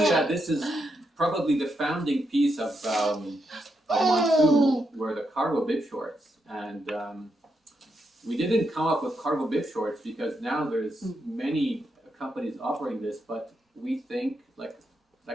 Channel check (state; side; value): normal; both; correlation 0.82